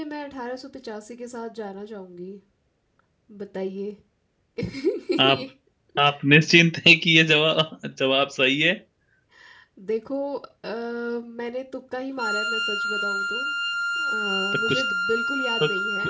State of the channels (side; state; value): both; identical; correlation 1.00